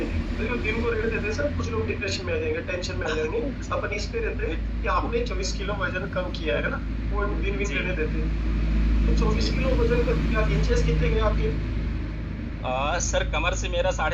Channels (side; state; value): both; identical; correlation 1.00